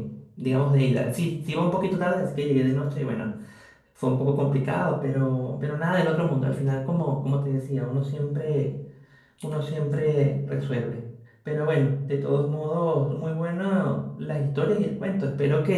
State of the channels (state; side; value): identical; both; correlation 1.00